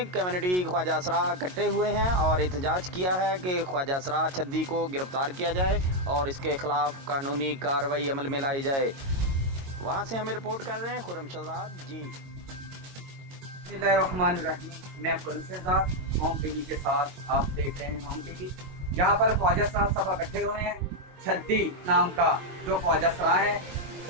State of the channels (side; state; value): left; late; 22 ms